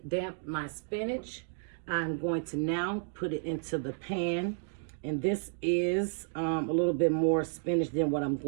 damp my spinach. I'm going to now put it into the pan. And this is a little bit more spinach than what I'm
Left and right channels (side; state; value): left; silent; digital silence